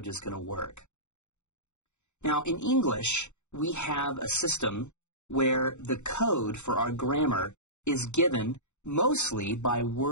is going to work. Now, in English, we have a system where the code for our grammar is given mostly by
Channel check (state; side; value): late; right; 0.83 ms